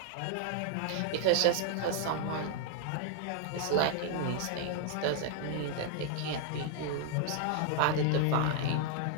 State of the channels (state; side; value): different; both; correlation 0.00